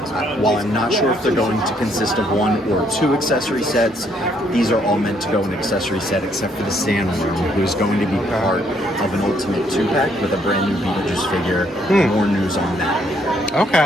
while I'm not sure if they're going to consist of 1 or 2 accessory sets, these are all meant to go in an accessory set except for the Sandworm, who is going to be part of an Ultimate 2-pack with a brand new Beetlejuice figure. More news on that.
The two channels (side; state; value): both; normal; correlation 0.69